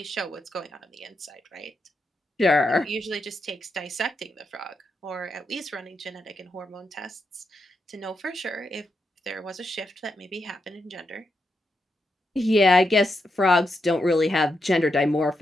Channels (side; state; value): both; normal; correlation 0.84